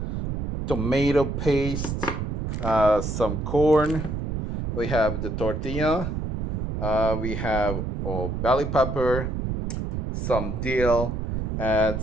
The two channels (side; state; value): right; noise; rumble, 2 dB below the sound